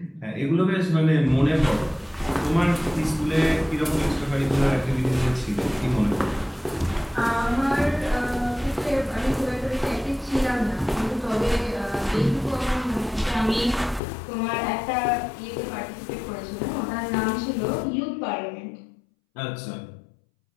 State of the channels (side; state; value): right; drops out; at 14.0 s